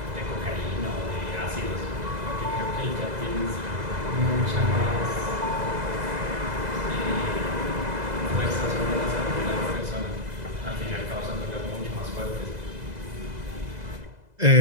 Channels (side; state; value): left; late; 2.0 ms